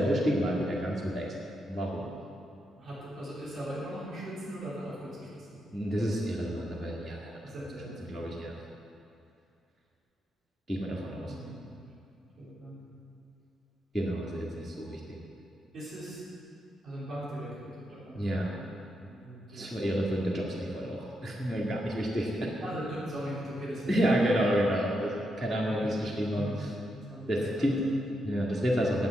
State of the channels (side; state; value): both; normal; correlation 0.83